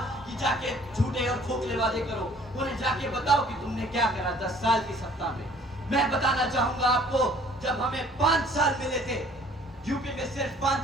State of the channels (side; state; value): both; normal; correlation 0.55